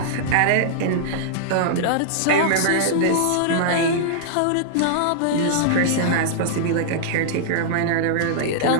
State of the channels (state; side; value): different; both; correlation -0.01